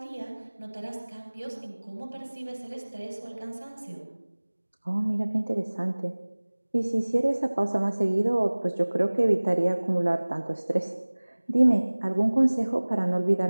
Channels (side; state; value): both; inverted; correlation -1.00